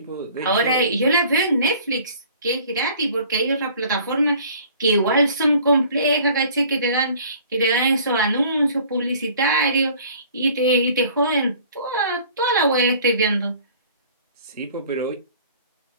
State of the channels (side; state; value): both; inverted; correlation -0.51